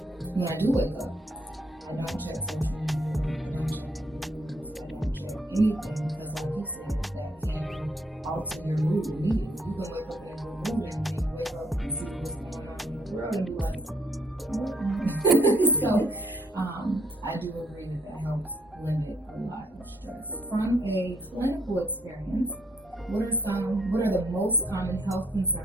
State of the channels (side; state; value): both; normal; correlation 0.70